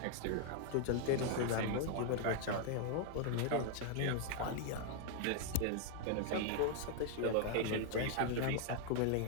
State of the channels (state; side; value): different; both; correlation 0.00